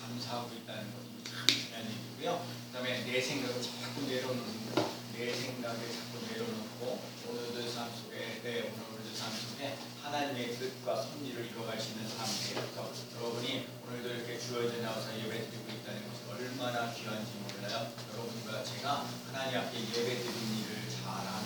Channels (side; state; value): both; identical; correlation 1.00